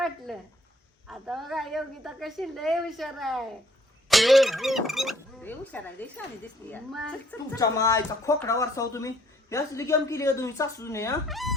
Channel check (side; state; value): both; normal; correlation 0.61